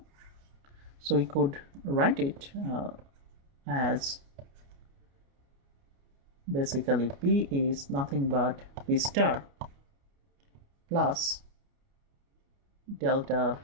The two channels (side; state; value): left; late; 29 ms